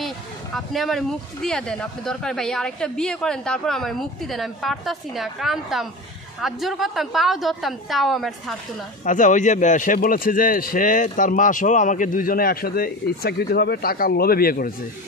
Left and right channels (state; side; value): normal; both; correlation 0.28